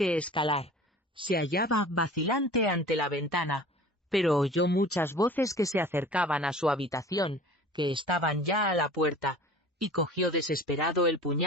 escalar. Se hallaba vacilante ante la ventana, pero oyó muchas voces que se acercaban a su habitación, que estaban ya a la puerta, y cogió desesperado el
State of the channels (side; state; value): both; normal; correlation 0.43